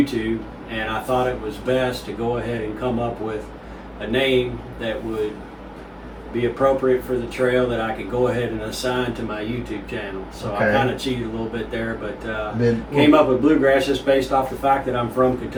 and I thought it was best to go ahead and come up with a name that would be appropriate for the trail that I could go ahead and assign to my YouTube channel. So Okay. I kind of cheated a little bit there, but Been- came up with Bluegrass just based off the fact that I'm from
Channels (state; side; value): identical; both; correlation 1.00